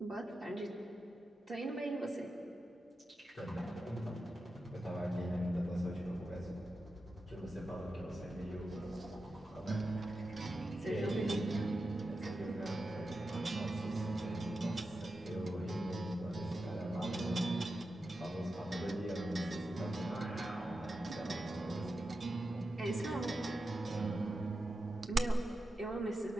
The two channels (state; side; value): normal; both; correlation 0.90